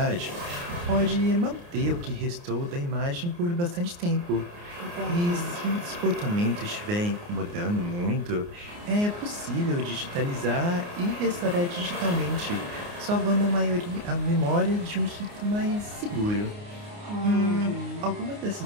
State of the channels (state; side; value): late; left; 29 ms